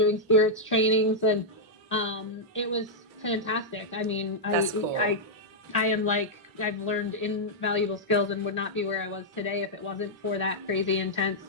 spirits trainings, and it was fantastic. I mean, Cool. I am like, I've learned invaluable skills and would not be where I was today if it wasn't for that crazy intense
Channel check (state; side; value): normal; both; correlation -0.06